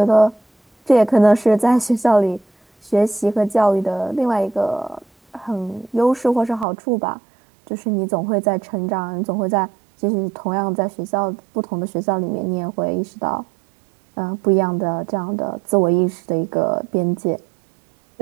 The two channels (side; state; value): left; drops out; at 6.7 s